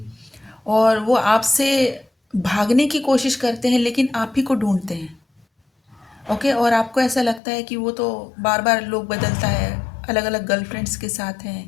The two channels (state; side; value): drops out; right; at 7.4 s